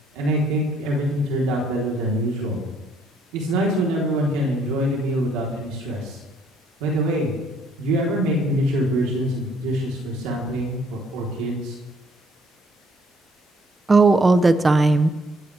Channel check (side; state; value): both; normal; correlation 0.66